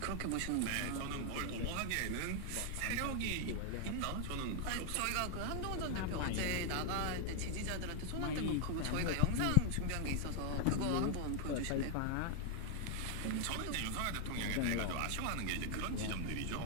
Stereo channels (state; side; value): different; both; correlation 0.00